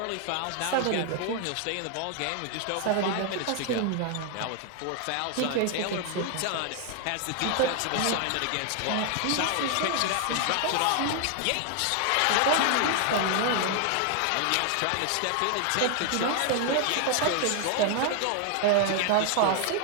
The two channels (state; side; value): different; both; correlation 0.00